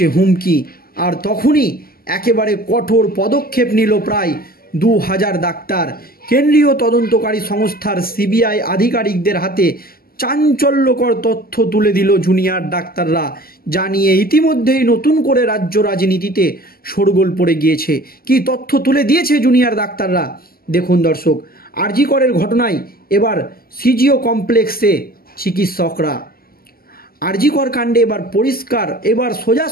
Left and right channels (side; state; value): right; late; 0.43 ms